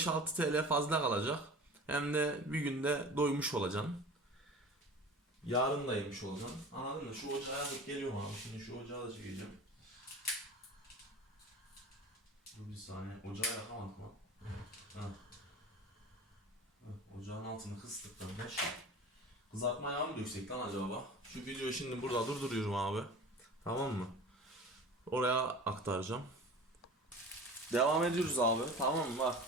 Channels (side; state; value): both; normal; correlation 0.38